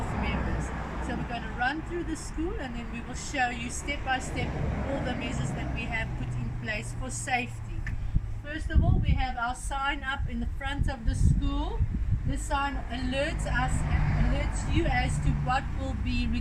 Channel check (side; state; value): both; identical; correlation 1.00